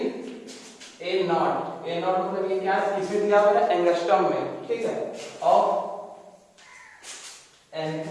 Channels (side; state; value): both; identical; correlation 1.00